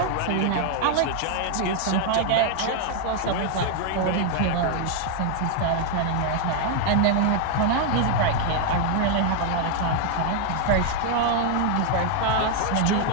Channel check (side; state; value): both; different; correlation 0.00